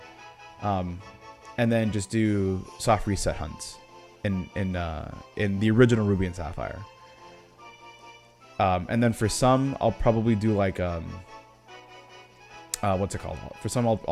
And then just do soft reset hunts in the original Ruby and Sapphire. And then for some, I'll probably do like what's it called? For some,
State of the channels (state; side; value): identical; both; correlation 1.00